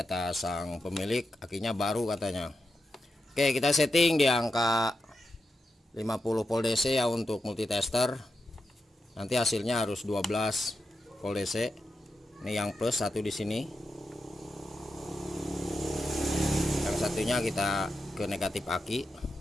sang pemilik akinya baru katanya. Oke, kita setting di angka 50 volt DC ya untuk multitester. Nanti hasilnya harus 12 volt DC. Ini yang plus satu di sini. Yang satunya kita ke negatif aki.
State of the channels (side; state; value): both; normal; correlation 0.88